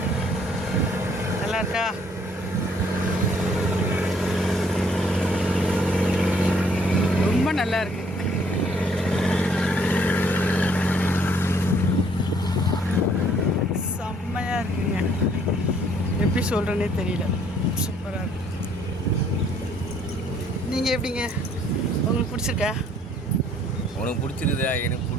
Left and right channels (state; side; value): normal; both; correlation 0.63